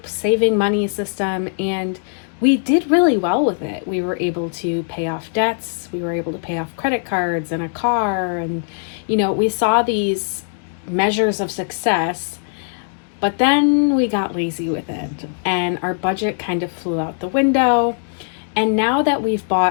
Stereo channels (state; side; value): silent; right; digital silence